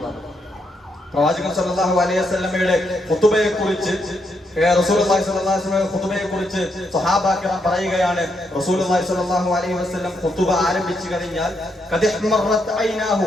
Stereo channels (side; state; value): both; normal; correlation 0.79